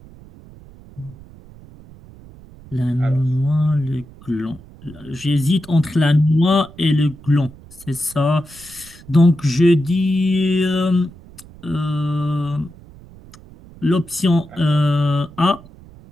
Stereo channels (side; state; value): right; noise; rumble, 21 dB below the sound